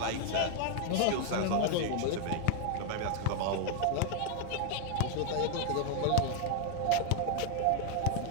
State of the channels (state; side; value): different; both; correlation 0.00